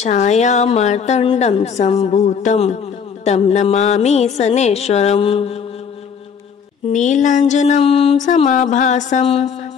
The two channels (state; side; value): quieter; right; 6.7 dB